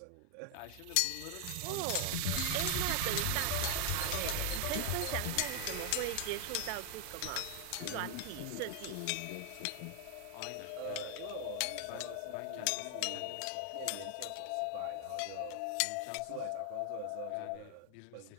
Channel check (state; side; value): different; both; correlation 0.00